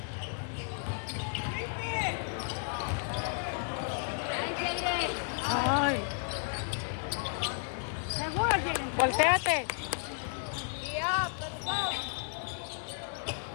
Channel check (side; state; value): right; silent; digital silence